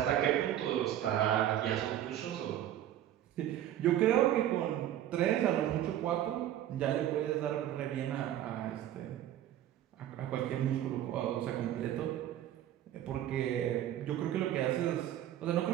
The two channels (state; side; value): quieter; left; 11.9 dB